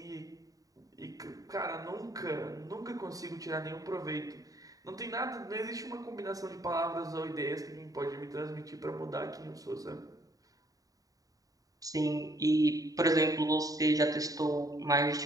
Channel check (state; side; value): late; left; 0.17 ms